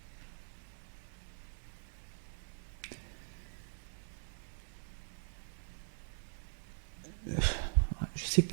Je ne sais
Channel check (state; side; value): silent; left; digital silence